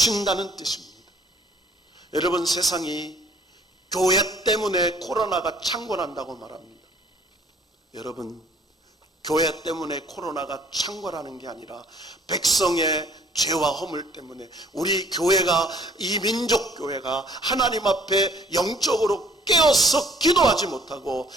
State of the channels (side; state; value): both; normal; correlation 0.58